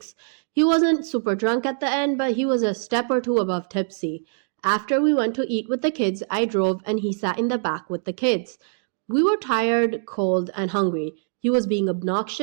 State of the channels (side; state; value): left; silent; digital silence